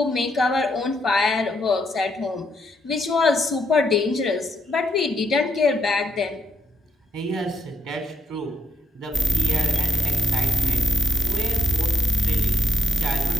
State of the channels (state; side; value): normal; both; correlation 0.79